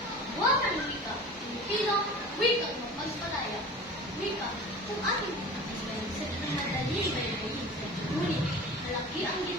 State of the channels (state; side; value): normal; both; correlation 0.37